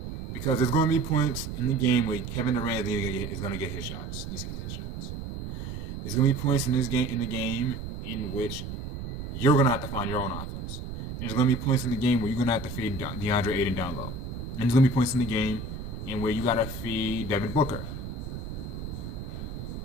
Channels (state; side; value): noise; right; rumble, 7 dB below the sound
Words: Because there's going to be points in the game where Kevin Durant is going to get his shots. Needs to get his shots. There's going to be points in the game in which you're going to have to find your own offense. And there's going to be points in the game where you're going to have to feed DeAndre Ayton down low. And there's going to be points in the game in where you got to feed Devin Booker.